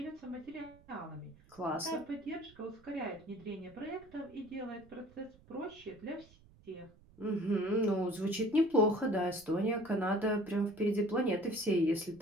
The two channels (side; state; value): right; noise; rumble, 26 dB below the sound